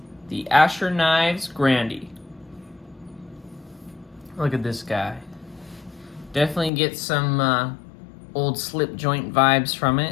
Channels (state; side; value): drops out; right; at 6.7 s